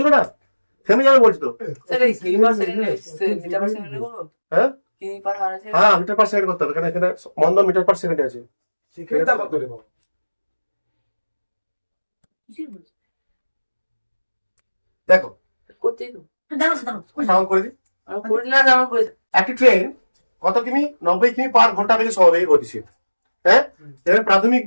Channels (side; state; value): both; inverted; correlation -1.00